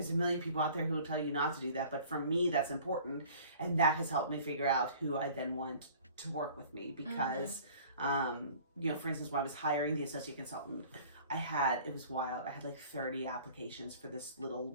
a million people out there who will tell you not to do that, but for me, that's important. And that has helped me figure out who I then want to work with me, because, for instance, when I was hiring the associate consultant, it was wild. I had like 30 applications for this little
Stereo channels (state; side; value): inverted; both; correlation -0.49